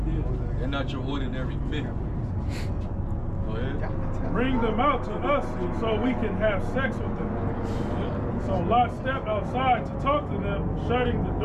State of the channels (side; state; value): both; identical; correlation 1.00